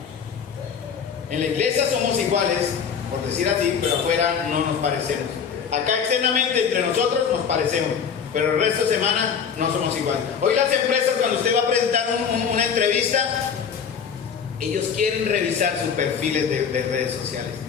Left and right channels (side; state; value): right; quieter; 6.9 dB